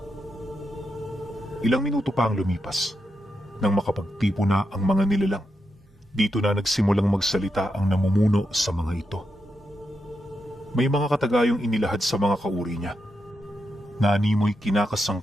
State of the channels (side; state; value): both; normal; correlation 0.85